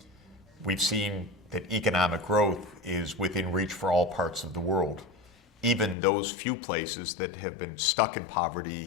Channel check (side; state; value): right; drops out; at 6.0 s